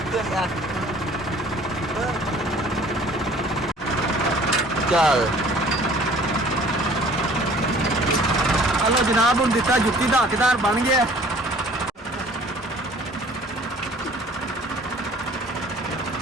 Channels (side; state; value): both; normal; correlation 0.51